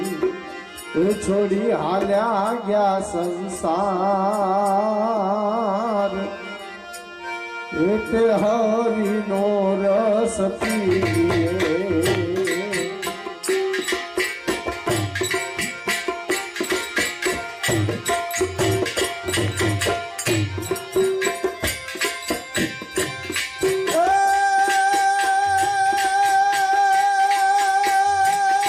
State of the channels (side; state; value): both; identical; correlation 1.00